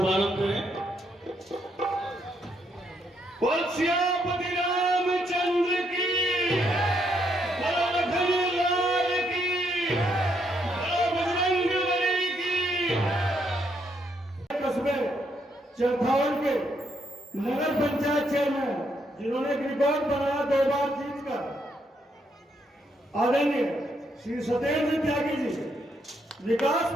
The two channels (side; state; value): both; normal; correlation 0.75